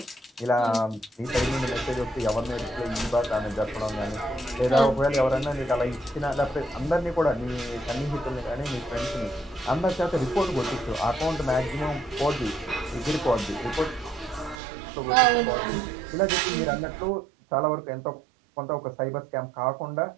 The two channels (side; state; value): left; drops out; at 14.6 s